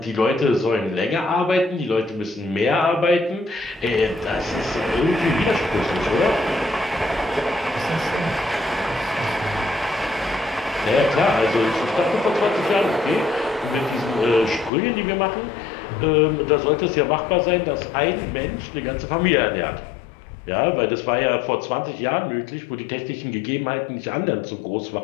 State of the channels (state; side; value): drops out; right; at 14.7 s